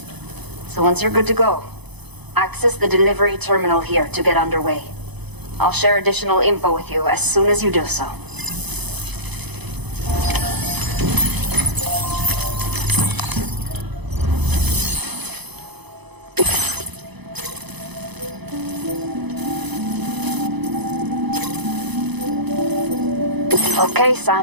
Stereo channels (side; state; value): left; late; 0.99 ms